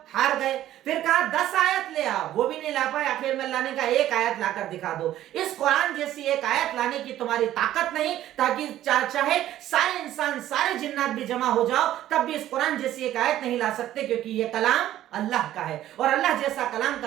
ہار گئے، پھر کہا 10 آیت لے آؤ، وہ بھی نہیں لا پائے، آخر میں اللہ نے کہا ایک آیت لا کر دکھا دو۔ اس قرآن جیسی ایک آیت لانے کی تمہاری طاقت نہیں، تاکہ چاہے سارے انسان سارے جنات بھی جمع ہو جاؤ تب بھی اس قرآن جیسی ایک آیت نہیں لا سکتے، کیونکہ یہ کلام اللہ کا ہے، اور اللہ جیسا کلام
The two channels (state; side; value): quieter; left; 13.1 dB